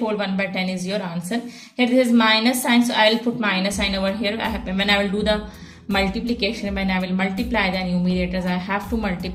1 by 10 is your answer. Here this is minus sign, so I will put minus sign over here. When I will do the multiplication, when I will multiply the numerators, I have to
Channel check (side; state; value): both; identical; correlation 1.00